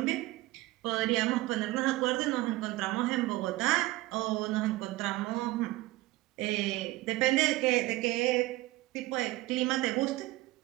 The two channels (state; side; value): quieter; left; 18.7 dB